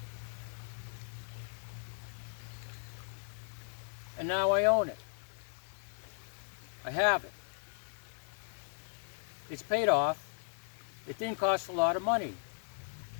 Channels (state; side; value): silent; right; digital silence